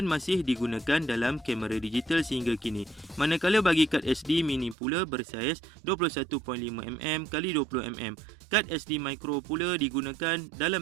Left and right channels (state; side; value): drops out; left; at 4.8 s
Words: masih digunakan dalam kamera digital sehingga kini. Manakala bagi kad SD mini pula bersaiz 21.5mm x 20mm. Kad SD micro pula digunakan dalam